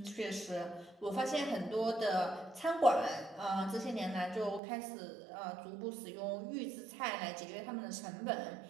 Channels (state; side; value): drops out; left; at 4.6 s